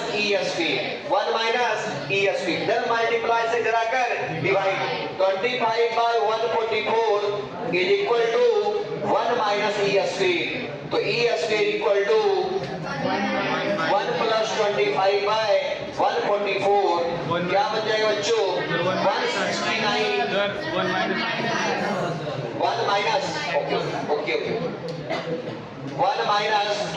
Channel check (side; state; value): both; identical; correlation 1.00